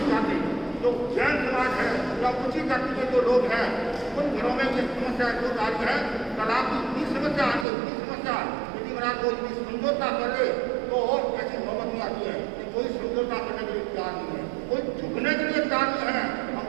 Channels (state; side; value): drops out; left; at 7.7 s